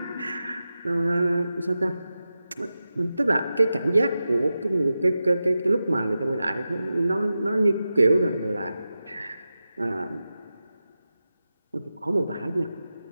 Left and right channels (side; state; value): both; inverted; correlation -0.92